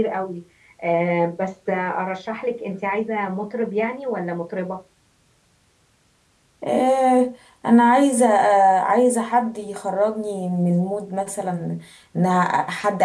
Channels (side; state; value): both; identical; correlation 1.00